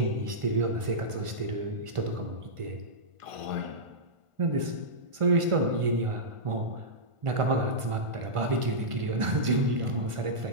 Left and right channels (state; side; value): late; left; 1.5 ms